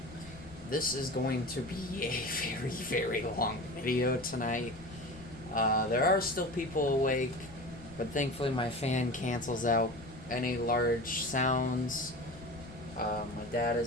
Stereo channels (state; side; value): noise; left; rumble, 18 dB below the sound